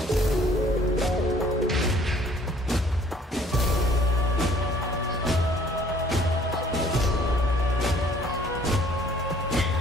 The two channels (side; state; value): both; normal; correlation 0.57